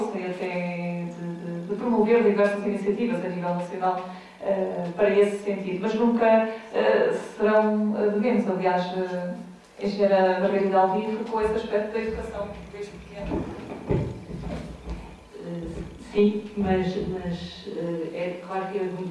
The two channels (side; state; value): both; identical; correlation 1.00